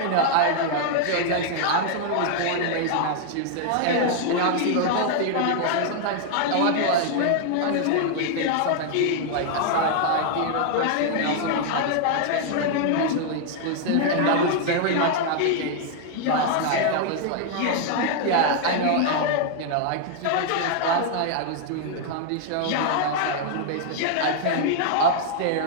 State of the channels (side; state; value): both; different; correlation 0.00